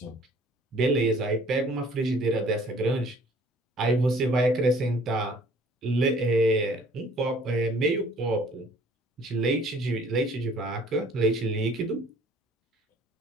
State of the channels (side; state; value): both; normal; correlation 0.55